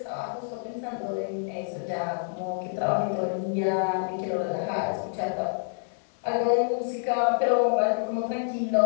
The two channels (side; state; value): right; silent; 60 dB below the other